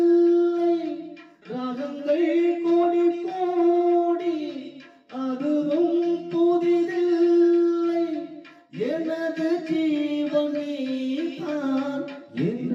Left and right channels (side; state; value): both; identical; correlation 1.00